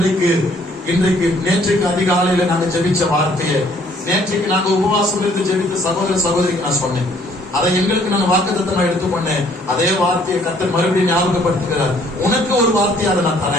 இன்றைக்கு நேற்றுக்கு அதிகாலையில நாங்க ஜெபிச்ச வார்த்தையை, நேற்றுக்கு நாங்க உபவாசம் இருந்து ஜெபித்த சகோதர சகோதரிக்கு நான் சொன்னேன். அதை எங்களுக்கு நான் வாக்குத்தத்தமா எடுத்துக்கொண்டேன். அதே வார்த்தையை கர்த்தர் மறுபடியும் ஞாபகப்படுத்துகிறார். உனக்கு ஒரு வார்த்தையை அதை நான்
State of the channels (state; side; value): normal; both; correlation 0.62